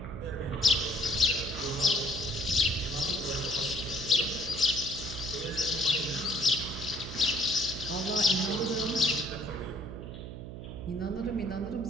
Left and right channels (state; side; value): noise; right; hum, 9 dB below the sound